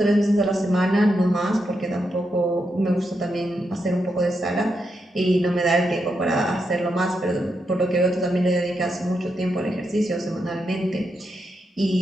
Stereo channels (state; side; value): normal; both; correlation 0.83